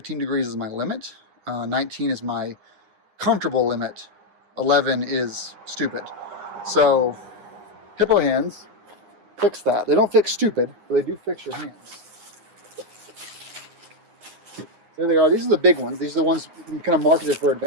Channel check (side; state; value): left; late; 9.7 ms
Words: degrees is my limit. 19 is my comfortable limit. 11 is stupid. So Hippo hands fix that. They don't fix stupid, but they do fix your hands. There they are. These are the big ones. These are the ones kind of marketed for